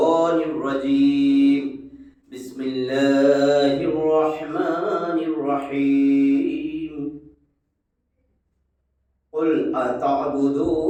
রাজীম। বিসমিল্লাহির রহমানির রহিম। কুল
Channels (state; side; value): identical; both; correlation 1.00